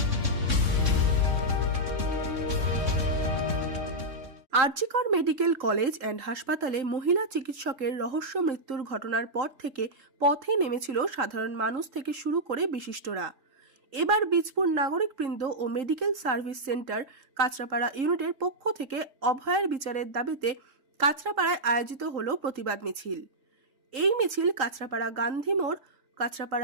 আরজিকর মেডিকেল কলেজ অ্যান্ড হাসপাতালে মহিলা চিকিৎসকের রহস্য মৃত্যুর ঘটনার পর থেকে পথে নেমেছিল সাধারণ মানুষ থেকে শুরু করে বিশিষ্টরা। এবার বীজপুর নাগরিকবৃন্দ ও মেডিকেল সার্ভিস সেন্টার কাঁচরাপাড়া ইউনিটের পক্ষ থেকে অভয়ের বিচারের দাবিতে কাঁচরাপাড়ায় আয়োজিত হলো প্রতিবাদ মিছিল। এই মিছিল কাঁচরাপাড়া গান্ধী মোড়,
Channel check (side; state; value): left; late; 3.8 ms